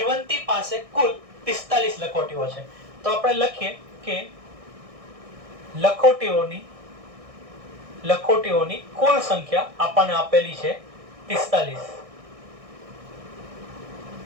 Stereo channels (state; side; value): late; left; 1.6 ms